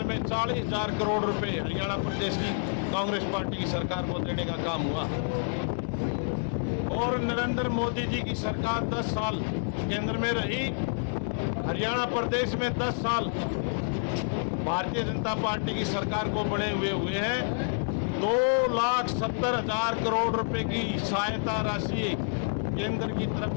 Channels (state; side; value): silent; right; 59 dB below the other